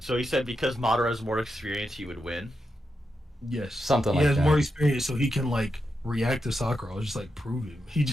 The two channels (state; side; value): normal; both; correlation 0.86